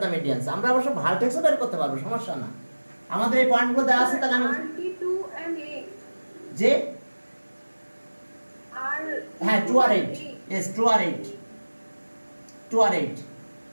the medians, আমরা অবশ্য ভার্টেক্সও বের করতে পারবো, সমস্যা না। আমাদের এই পয়েন্টগুলো দেওয়া আছে, তাহলে আমি RT2 and 8 যে আর হ্যাঁ 2 আর 8, यस 2 আর 8, 2 আর 8,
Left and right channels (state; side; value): inverted; both; correlation -1.00